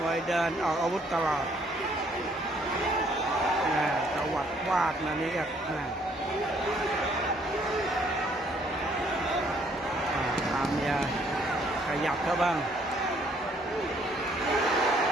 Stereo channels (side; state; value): both; normal; correlation 0.65